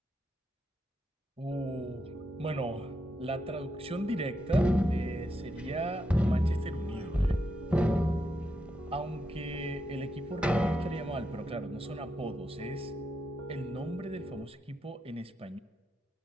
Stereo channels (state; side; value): normal; both; correlation 0.84